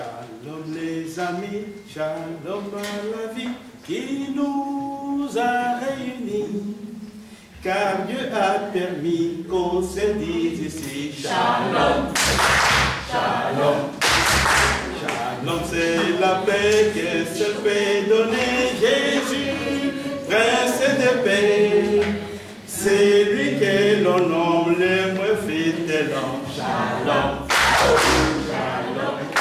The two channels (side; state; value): both; identical; correlation 1.00